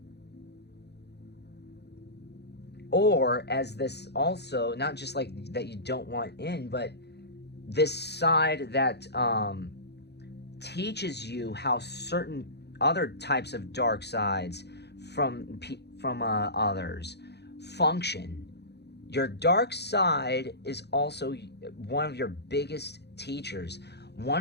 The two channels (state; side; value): late; right; 0.49 ms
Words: Or as this also, not just like that you don't want in, but this side that teaches you how certain other types of dark sides from others function. Your dark side is also one of your biggest teachers.